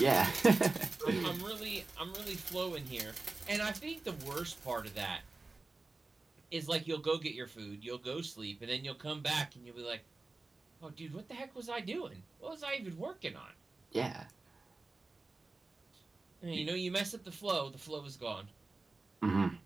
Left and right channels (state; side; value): quieter; left; 3.5 dB